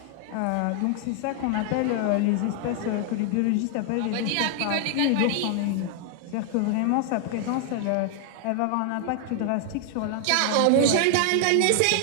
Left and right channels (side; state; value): both; different; correlation 0.00